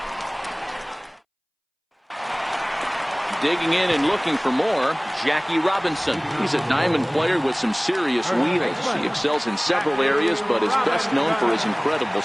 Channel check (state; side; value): identical; both; correlation 1.00